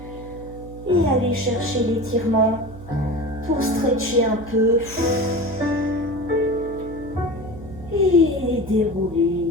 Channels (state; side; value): noise; right; hum, 15 dB below the sound